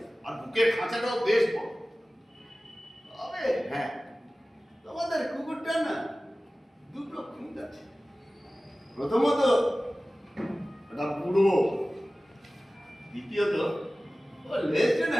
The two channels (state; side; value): normal; both; correlation 0.97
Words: আর বুকের খাঁচাটাও বেশ বড়। তবে হ্যাঁ, তোমাদের কুকুরটা না দুটো খুঁত আছে। প্রথমত এটা বুড়ো, দ্বিতীয়ত ও লেজটা না